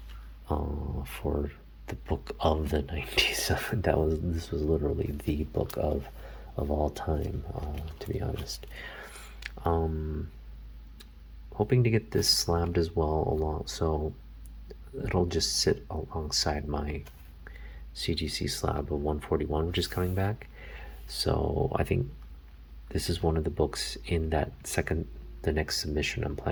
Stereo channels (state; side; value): identical; both; correlation 1.00